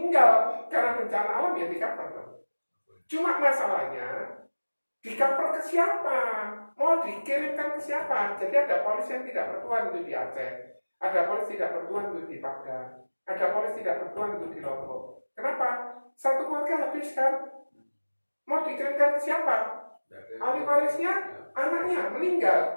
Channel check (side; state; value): both; inverted; correlation -1.00